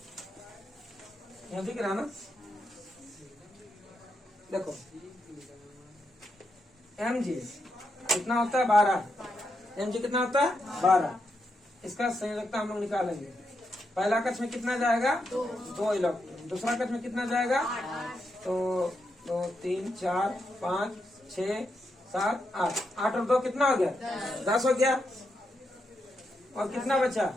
यहाँ दिख रहा ना, देखो mg कितना होता है? 12। mg कितना होता है? 12। इसका संयोजकता हम लोग निकालेंगे। पहला कक्ष में कितना जाएगा? 2 इलेक्ट्रॉन। दूसरा कक्ष में कितना जाएगा? तो 2 3 4 5 6 7 8। 8 और 2 कितना हो गया? 10 हो गया। और कितना बचा?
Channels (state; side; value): normal; both; correlation 0.83